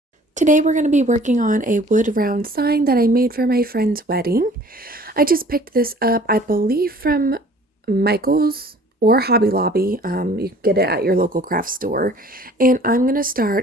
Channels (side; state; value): both; normal; correlation 0.51